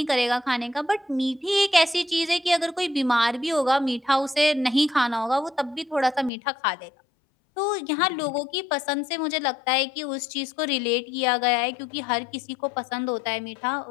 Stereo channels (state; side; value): drops out; right; at 6.3 s